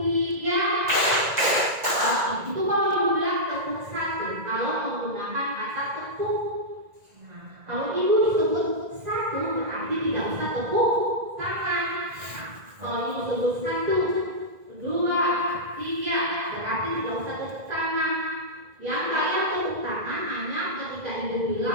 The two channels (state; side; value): late; left; 1.9 ms